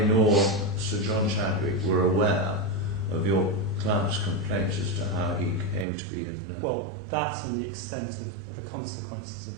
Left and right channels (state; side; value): drops out; left; at 5.9 s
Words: nor Sir John Chadwick were aware of your client's complaints as to how he came to be... Well, that and the extent of the consequences